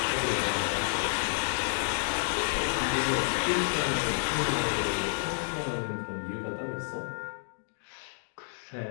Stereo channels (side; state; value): right; silent; digital silence